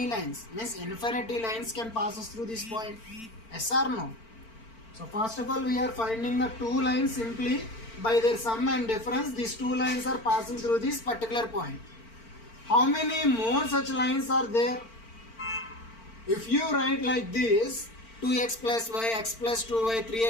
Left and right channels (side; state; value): right; late; 4.4 ms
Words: lines. Means infinity lines can pass us through this point. Yes or no? So first of all we are finding the two lines simply by their sum and difference. These two lines are passing through this particular point. How many more such lines are there? If you write like this, 2x plus y, x plus 2y,